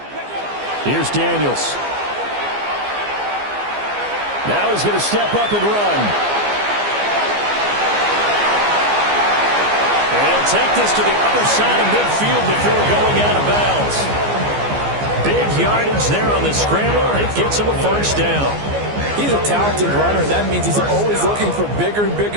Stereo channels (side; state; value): left; late; 14 ms